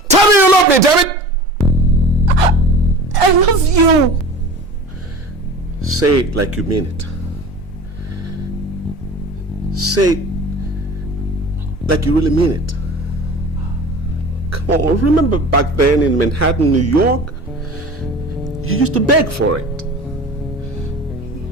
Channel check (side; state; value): both; normal; correlation 0.39